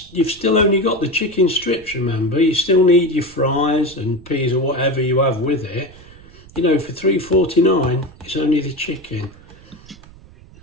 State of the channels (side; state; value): right; noise; rumble, 22 dB below the sound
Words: still only got the chicken strips, remember. You still need your fries and peas or whatever you have with it. You know, for £3.49, it's only the chicken.